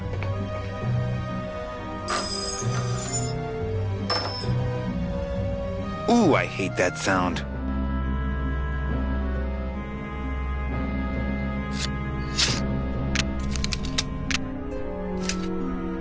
Ooh, I hate that sound.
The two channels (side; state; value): both; identical; correlation 1.00